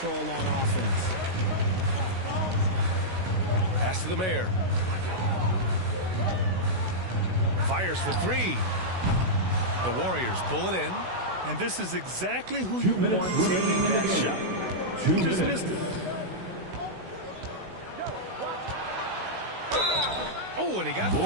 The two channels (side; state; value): left; late; 16 ms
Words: on offense. Pass to the mayor. Fires for three. The Warriors pull it in. And this is exactly who you want taking that shot. He just missed it. Oh, and he got